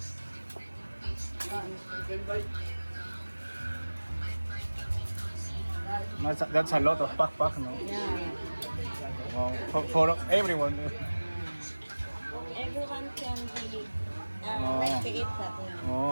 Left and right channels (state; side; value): inverted; both; correlation -1.00